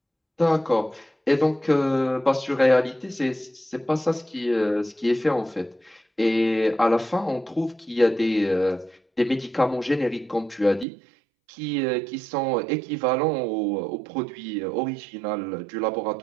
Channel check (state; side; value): drops out; left; at 10.9 s